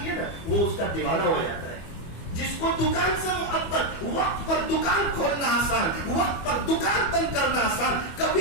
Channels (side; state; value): right; late; 25 ms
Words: ہے نا وہ اس کا دیوانہ ہو جاتا ہے. جس کو دکان سے محبت, وقت پر دکان کھولنا آسان, وقت پر دکان بند کرنا آسان,